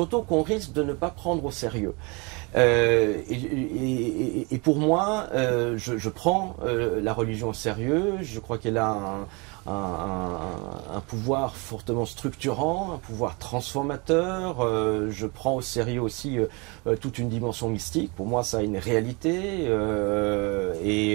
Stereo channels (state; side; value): quieter; left; 29.3 dB